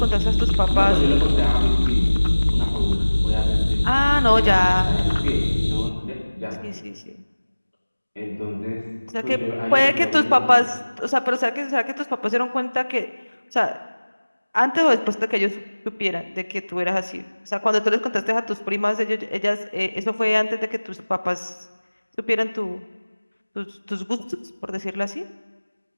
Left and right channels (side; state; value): both; inverted; correlation -1.00